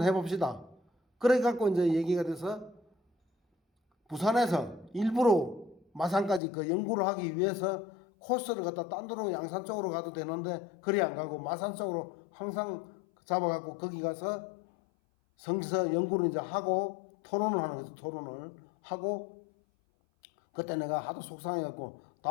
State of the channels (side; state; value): right; drops out; at 6.4 s